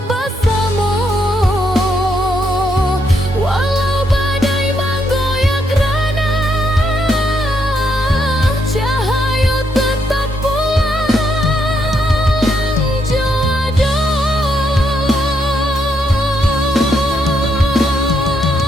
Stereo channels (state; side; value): normal; both; correlation 0.77